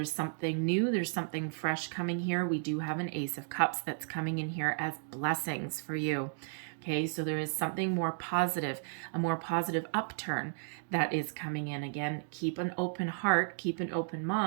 something new, there's something fresh coming here. We do have an Ace of Cups that's coming in here as blessings for you. Okay, so there is something more positive, a more positive upturn that is coming in. Again, keep an open heart, keep an open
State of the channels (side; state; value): left; silent; digital silence